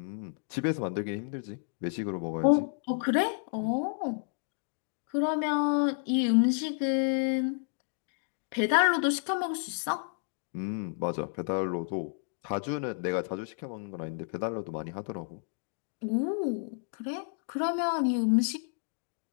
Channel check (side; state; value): right; silent; 57 dB below the other